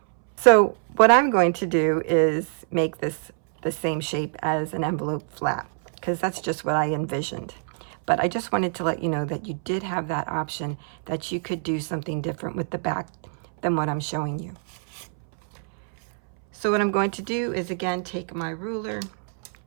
So what I'm going to do is make this the same shape as an envelope flap, because that's just what I envisioned. But I just wanted to let you know that you did have that option, that you could do something different with the back than what I'm showing you. So what I'm going to do is, again, take my ruler,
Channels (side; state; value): left; silent; 62 dB below the other